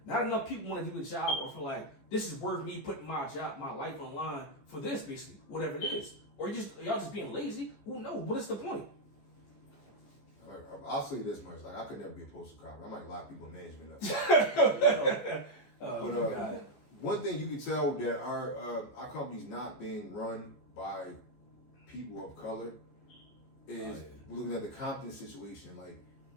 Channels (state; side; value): late; right; 15 ms